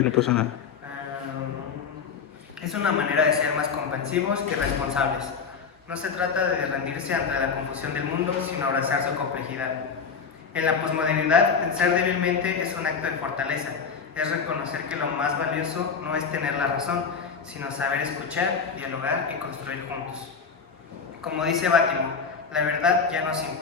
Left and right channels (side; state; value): right; quieter; 5.9 dB